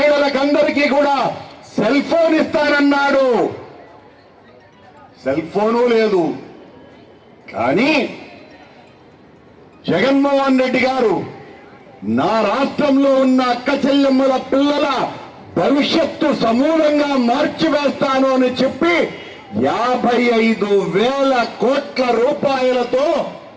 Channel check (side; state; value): both; identical; correlation 1.00